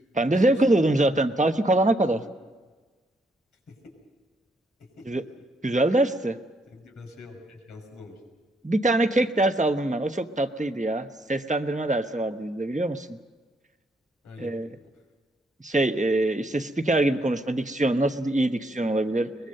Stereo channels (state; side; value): normal; both; correlation 0.73